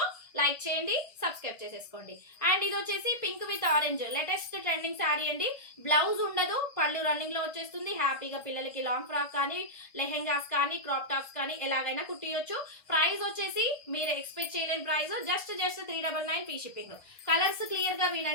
లైక్ చేయండి, సబ్స్క్రైబ్ చేసేసుకోండి. అండ్ ఇది వచ్చేసి pink with orange latest trending sari అండి. బ్లౌజ్ ఉండదు, పళ్ళు రన్నింగ్ లో వచ్చేస్తుంది. హ్యాపీగా పిల్లలకి లాంగ్ ఫ్రాక్ కానీ, లెహెంగాస్ కానీ, క్రాప్ టాప్స్ కానీ ఎలాగైనా కుట్టియొచ్చు. ప్రైస్ వచ్చేసి మీరు ఎక్స్పెక్ట్ చేయలేని price, just 399 free shipping. Colours clear గా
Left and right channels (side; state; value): right; late; 1.6 ms